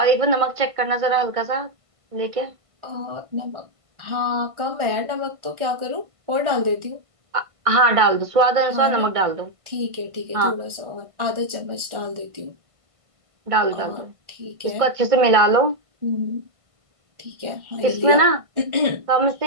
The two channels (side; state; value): left; late; 1.5 ms